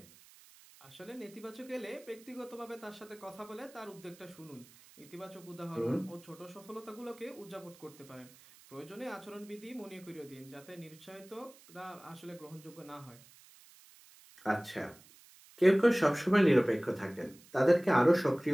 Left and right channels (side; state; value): right; noise; hiss, 24 dB below the sound